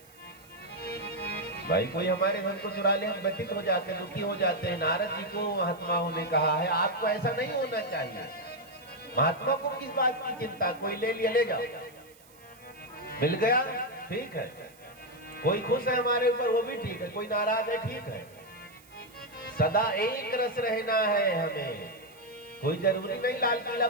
भाई कोई हमारे धन को चुरा ले, हम व्यथित हो जाते हैं, दुखी हो जाते हैं। नारद जी को महात्माओं ने कहा है आपको ऐसा नहीं होना चाहिए। महात्मा को किस बात की चिंता, कोई ले लिया ले जाओ, मिल गया ठीक है, कोई खुश है हमारे ऊपर वो भी ठीक है, कोई नाराज है ठीक है। सदा एक रस रहना है हमें, कोई जरूरी नहीं लाल किला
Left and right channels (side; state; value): right; noise; hiss, 26 dB below the sound